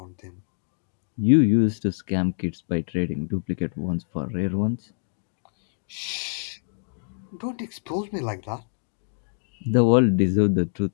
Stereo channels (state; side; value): silent; right; digital silence